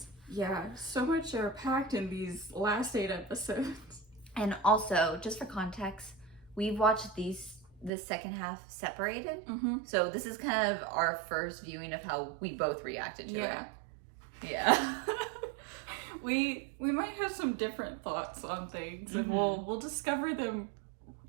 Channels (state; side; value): drops out; left; at 7.9 s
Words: Yeah, so much are packed in these last 8 episodes. And also, just for context, we've watched the second half separated. So this is kind of our first viewing of how we both reacted to it. Yeah. We might have some different thoughts on things, and we'll discover them